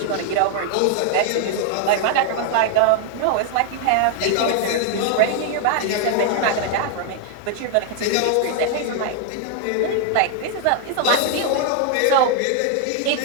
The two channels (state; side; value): different; both; correlation 0.00